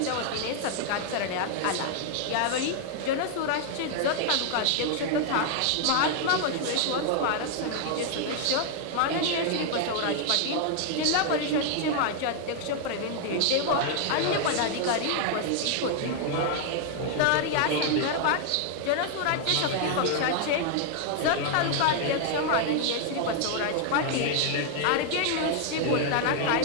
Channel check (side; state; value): both; different; correlation 0.00